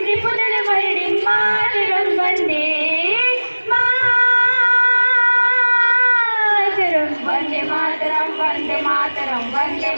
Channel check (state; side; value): inverted; both; correlation -1.00